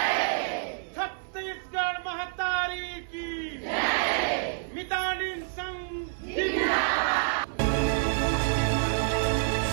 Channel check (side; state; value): left; silent; 59 dB below the other